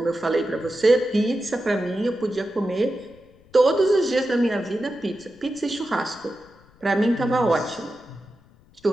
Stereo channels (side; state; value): left; noise; rumble, 28 dB below the sound